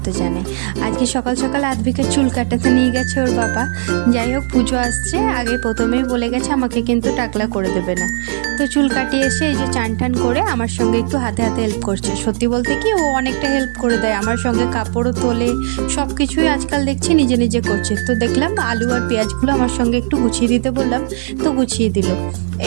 জানাই। আজকে সকাল সকাল আদ্ভিকের চুল কাটাতে নিয়ে গেছে ওর বাবা। যাই হোক, পুজো আসছে, আগে প্রথমেই বলে গেছে আমাকে কিন্তু টাকলা করে দেবে না। তো চুল কাটিয়ে এসে এই যে চান টান করে আমার সঙ্গে একটু হাতে হাতে হেল্প করছে। সত্যি বলতে কি, ও অনেকটা হেল্প করে দেয়, আমার সঙ্গে কাপড়ও তোলে, সব কিছুই আজকাল দেখছি নিজে নিজে করছে। তো দেখলাম আলু আর পেঁয়াজগুলো আমার সঙ্গে একটু গুছিয়ে দিতে বললাম, তো গুছিয়ে দিল।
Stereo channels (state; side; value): silent; left; digital silence